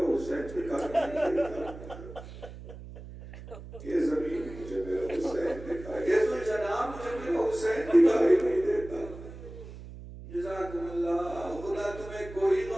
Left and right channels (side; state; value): right; noise; hum, 14 dB below the sound